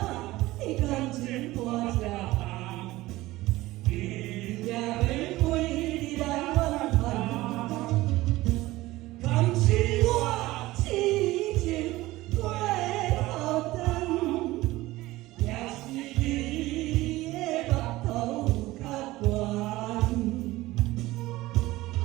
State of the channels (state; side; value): quieter; left; 18.1 dB